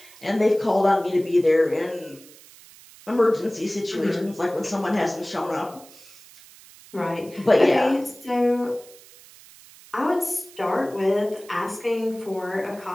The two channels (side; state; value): right; noise; hiss, 22 dB below the sound